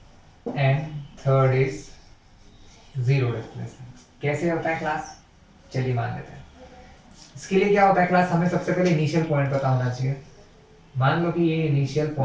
and third is zero displacement. कैसे होता है क्लास, चलिए मान लेते हैं। इसके लिए क्या होता है क्लास, हमें सबसे पहले इनिशियल पॉइंट पता होना चाहिए। मान लो कि ये इनिशियल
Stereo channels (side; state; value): both; identical; correlation 1.00